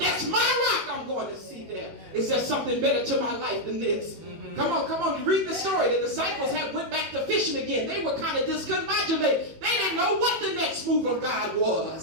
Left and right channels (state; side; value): late; left; 18 ms